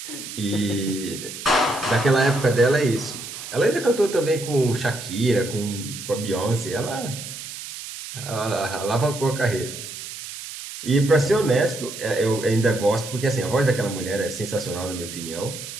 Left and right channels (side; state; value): right; noise; hiss, 10 dB below the sound